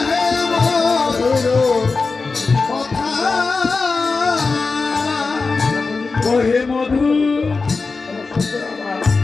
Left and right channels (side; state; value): right; quieter; 4.2 dB